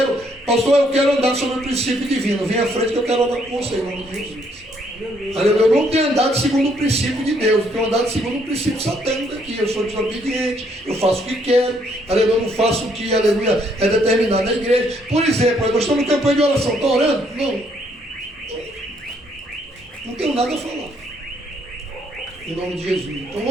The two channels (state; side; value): normal; both; correlation 0.69